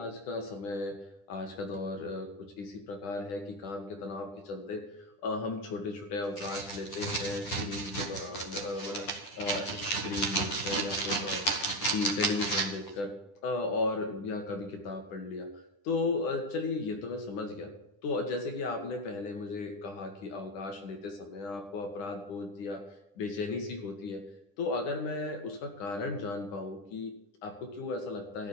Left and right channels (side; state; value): right; late; 10 ms